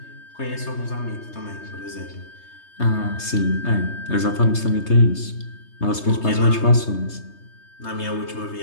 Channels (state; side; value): late; right; 3.2 ms